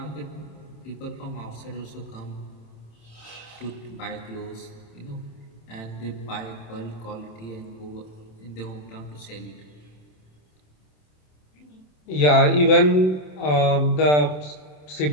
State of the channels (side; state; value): right; late; 27 ms